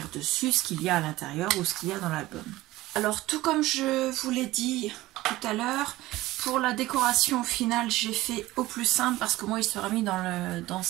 dessus ce qu'il y a à l'intérieur ou ce qu'il y a dans l'album. Alors tout comme je vous l'ai dit tout à l'heure, pour la décoration finale j'ai fait au plus simple parce que moi il sera mis dans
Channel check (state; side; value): quieter; left; 17.6 dB